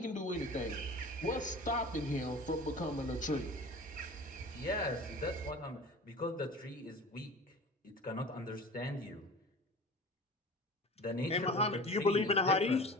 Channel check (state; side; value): normal; both; correlation 0.38